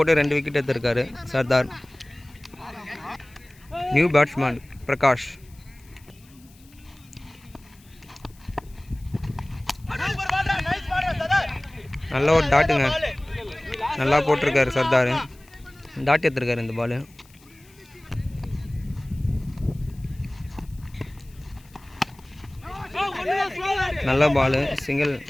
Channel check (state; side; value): noise; left; hiss, 28 dB below the sound